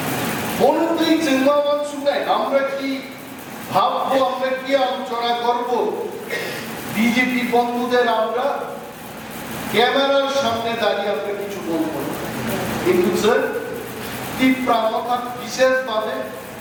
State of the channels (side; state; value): both; identical; correlation 1.00